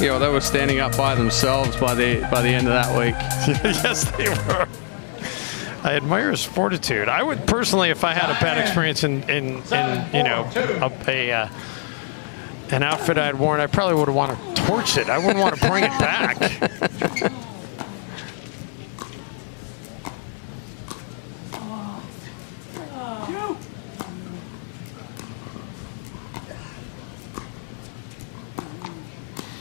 you know, they were standing up by themselves by the end of that week. Yes, they were. I admire his fortitude. I would personally, if I had a bad experience in you know, an outfit I had worn, I probably would have wanted to torch it. I wouldn't want to bring it back.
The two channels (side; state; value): right; silent; 55 dB below the other